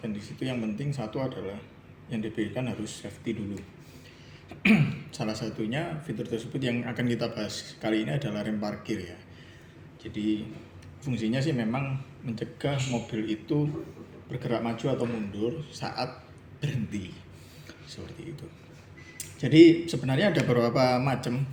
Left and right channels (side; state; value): both; identical; correlation 1.00